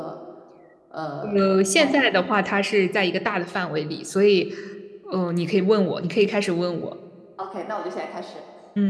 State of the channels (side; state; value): both; identical; correlation 1.00